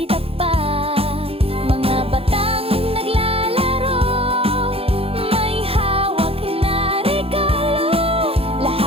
takpak. Mga batang naglalaro, may hawak na regalo.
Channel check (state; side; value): late; left; 0.28 ms